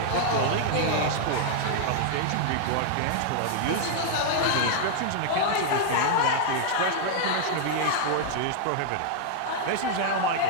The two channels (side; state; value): both; different; correlation -0.01